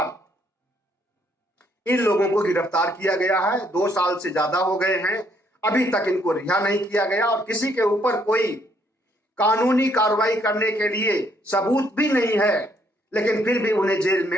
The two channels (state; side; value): normal; both; correlation 0.69